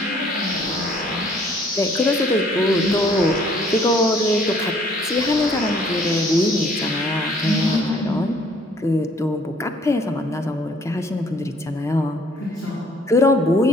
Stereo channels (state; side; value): normal; both; correlation 0.60